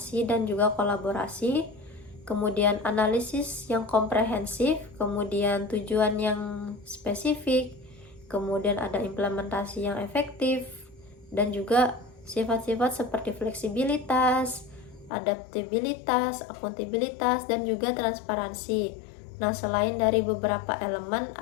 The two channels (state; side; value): drops out; right; at 15.1 s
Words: dan juga kolaborasi, kemudian analisis yang komprehensif, kemudian tujuan yang spesifik, kemudian ada implementasi yang efektif, dan juga sifat-sifat seperti fleksibilitas, adaptabilitas, akuntabilitas, dan juga transparansi. Nah, selain dari beberapa elemen,